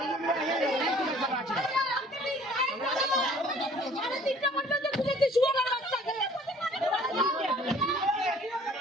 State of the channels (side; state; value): both; normal; correlation 0.54